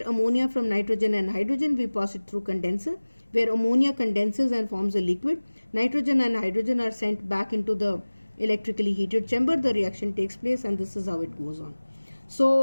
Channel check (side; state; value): both; inverted; correlation -1.00